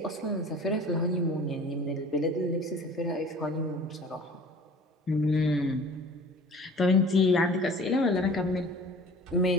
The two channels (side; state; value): both; normal; correlation 0.45